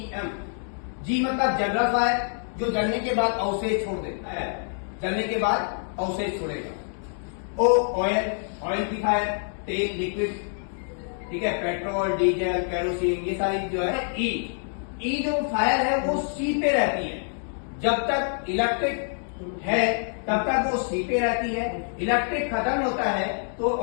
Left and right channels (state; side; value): silent; right; 61 dB below the other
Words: जी मतलब जनरल फायर, जो जलने के बाद अवशेष छोड़ देता है, जलने के बाद अवशेष छोड़ेगा। ओ ऑयल, ऑयल की फायर, तेल लिक्विड, ठीक है, पेट्रोल डीजल केरोसिन, ये सारी जो है। ई जो फायर है वो सी पे रहती है, जब तक इलेक्ट्रिक है तब तक वो सी पे रहती है, इलेक्ट्रिक खत्म होता है तो